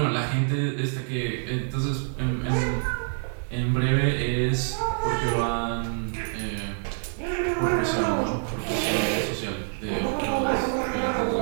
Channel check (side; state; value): left; silent; 61 dB below the other